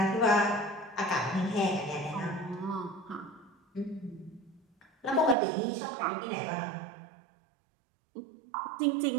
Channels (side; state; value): left; drops out; at 5.4 s